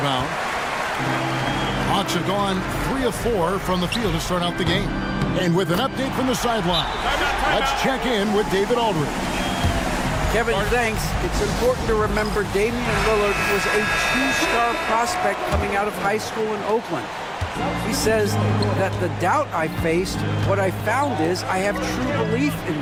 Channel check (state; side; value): identical; both; correlation 1.00